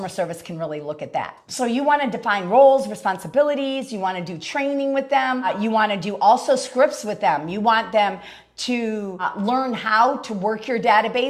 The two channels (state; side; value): identical; both; correlation 1.00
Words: service can really look at that. So you want to define roles, responsibilities, you want to do training with them, you want to do also scripts with them. You want them to learn how to work your